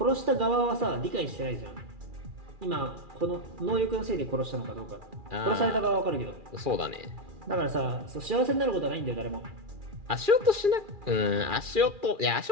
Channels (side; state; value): left; late; 2.4 ms